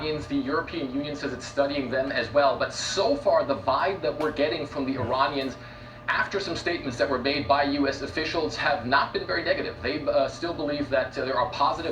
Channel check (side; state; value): both; identical; correlation 1.00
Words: The European Union says it's studying them as well. But so far, the vibe that we're getting from the Iranians, after some statements that were made by U.S. officials, have not been very negative. They still believe that there are